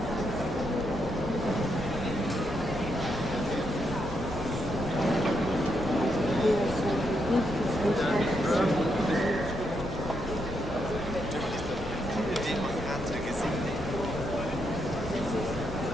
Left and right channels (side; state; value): both; normal; correlation 0.80